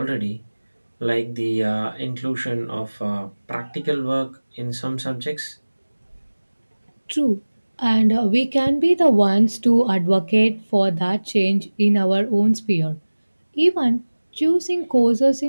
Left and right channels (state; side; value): inverted; both; correlation -1.00